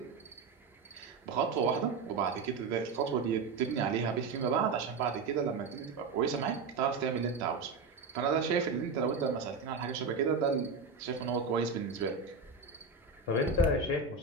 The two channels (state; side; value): quieter; left; 4.4 dB